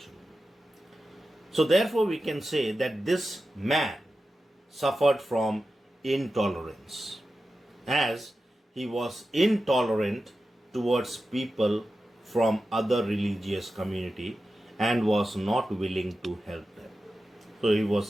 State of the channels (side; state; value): both; normal; correlation 0.92